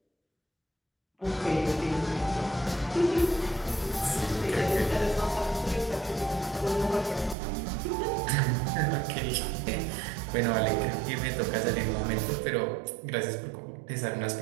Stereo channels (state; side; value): drops out; left; at 7.4 s